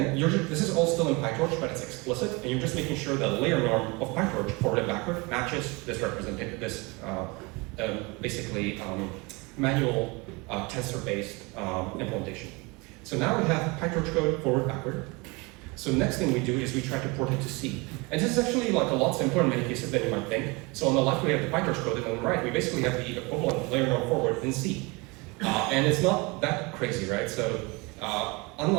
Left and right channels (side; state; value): left; quieter; 26.7 dB